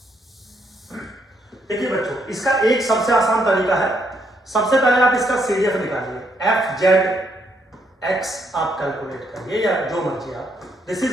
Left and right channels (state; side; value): normal; both; correlation 0.74